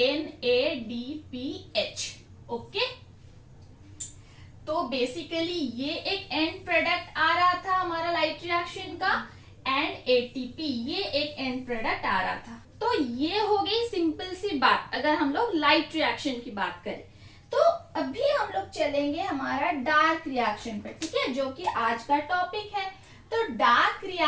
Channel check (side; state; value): both; identical; correlation 1.00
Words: NADPH। ओके, तो बेसिकली ये एक एंड प्रोडक्ट आ रहा था हमारा लाइट रिएक्शन का, एंड ATP ये एक एंड प्रोडक्ट आ रहा था। तो ये हो गई सिंपल सी बात अगर हम लोग लाइट रिएक्शन की बात करें। तो अभी हम लोग चलेंगे हमारा डार्क रिएक्शन पे, ठीक है, जो कि आज का टॉपिक है। तो डार्क